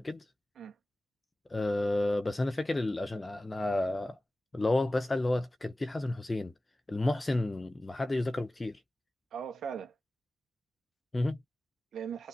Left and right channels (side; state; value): both; normal; correlation 0.96